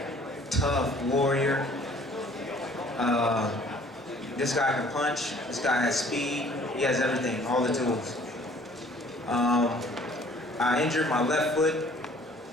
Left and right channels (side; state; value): both; normal; correlation 0.55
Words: tough warrior. This guy can punch, this guy has speed, he has everything, all the tools. I injured my left foot